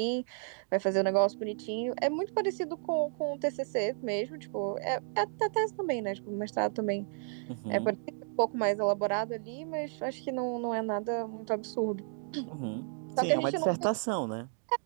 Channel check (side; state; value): left; silent; 56 dB below the other